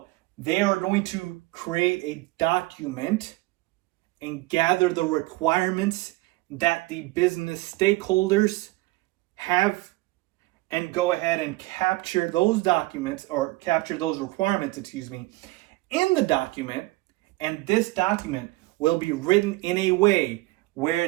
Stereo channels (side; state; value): left; quieter; 20.9 dB